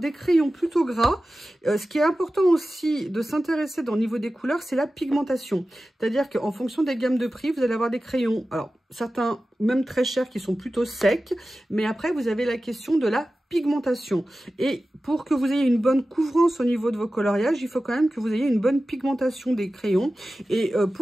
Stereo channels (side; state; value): both; normal; correlation 0.95